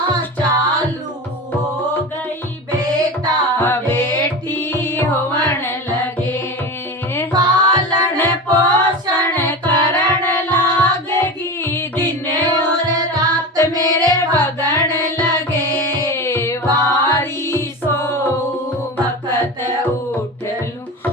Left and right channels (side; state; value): both; normal; correlation 0.27